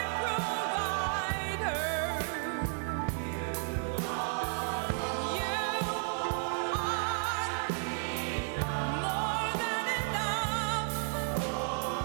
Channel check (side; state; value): left; silent; 56 dB below the other